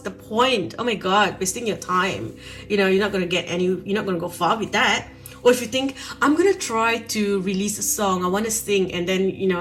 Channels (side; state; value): both; identical; correlation 1.00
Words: point? Oh my God, wasting your time. You're not going to go far with that. Or if you think, I'm going to try to release a song, I want to sing, and